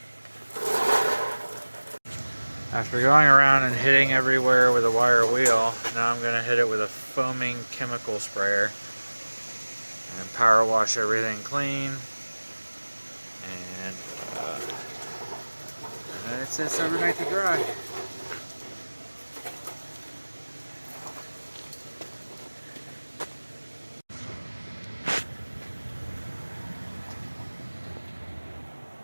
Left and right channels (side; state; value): both; inverted; correlation -1.00